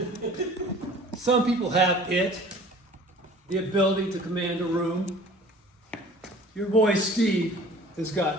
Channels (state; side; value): normal; both; correlation 0.48